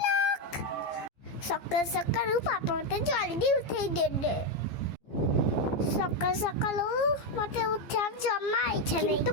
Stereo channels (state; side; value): late; right; 14 ms